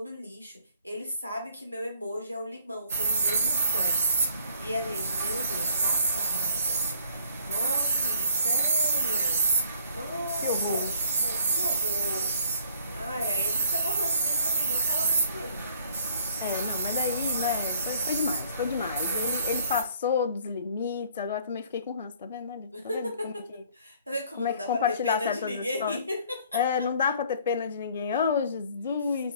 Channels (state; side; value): inverted; both; correlation -0.59